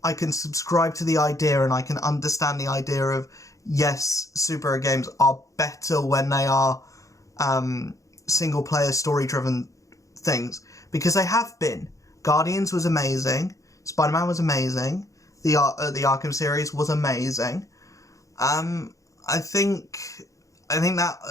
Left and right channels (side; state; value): right; late; 0.16 ms